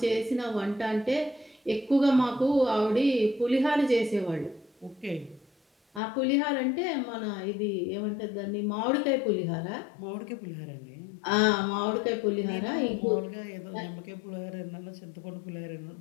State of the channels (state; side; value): drops out; right; at 6.0 s